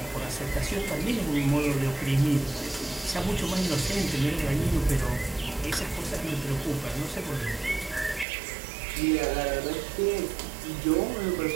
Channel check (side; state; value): left; drops out; at 8.2 s